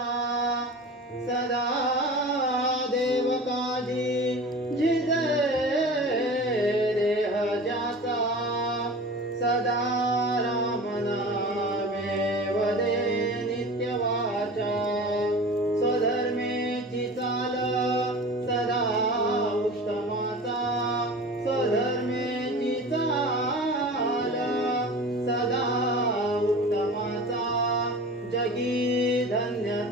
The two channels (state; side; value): normal; both; correlation 0.36